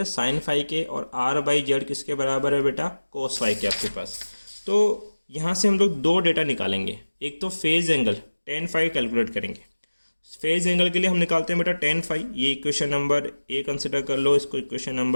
साइन फाई के, और R/Z किसके बराबर है बेटा कोस फाई के आपके पास। तो यहाँ से हम लोग दो डेटा निकालेंगे, एक तो phase angle tan phi calculate करेंगे। फेज एंगल के लिए हम निकालते हैं बेटा tan फाई, ये इक्वेशन नंबर A कंसिडर कर लो, इसको इक्वेशन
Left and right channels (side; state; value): both; inverted; correlation -1.00